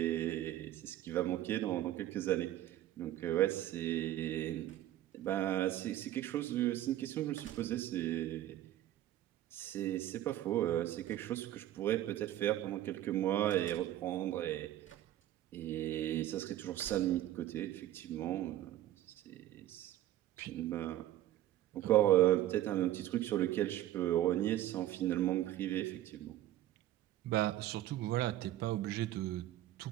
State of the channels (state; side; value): quieter; left; 13.5 dB